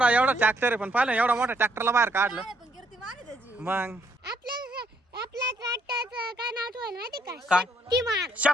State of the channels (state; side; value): normal; both; correlation 0.70